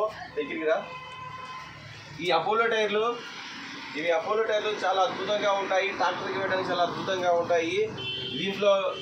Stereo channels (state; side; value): identical; both; correlation 1.00